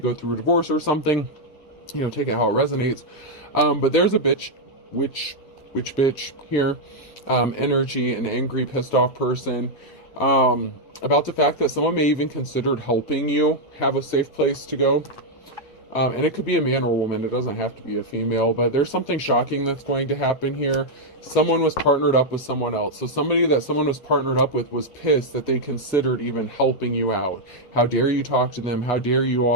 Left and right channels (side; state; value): right; late; 8.8 ms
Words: through a divorce or something, take it how it resonates. But there's a bitch here, energy, an angry, pissed off person, about the fact that someone may even considered helping you have a safe place to go. And it could be a man or a woman. It doesn't have to be a female, but there's something shocking that's going to happen here. Someone was partnered up with someone else. So somebody that someone was partnered up with was pissed that they considered even helping you out. How dare you talk to them? How dare you